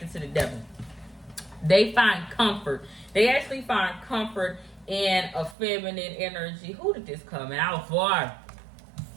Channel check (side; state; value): left; drops out; at 5.6 s